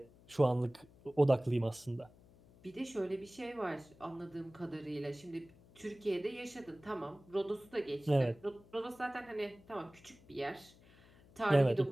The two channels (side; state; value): left; noise; hum, 25 dB below the sound